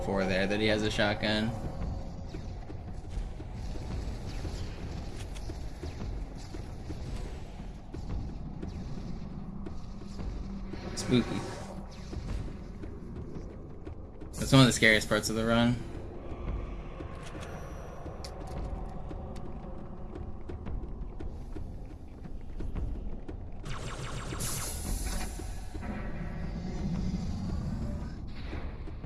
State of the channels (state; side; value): identical; both; correlation 1.00